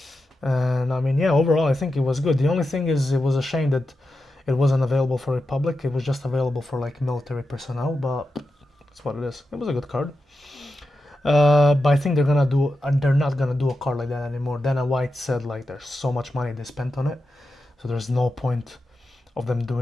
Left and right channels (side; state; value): both; normal; correlation 0.89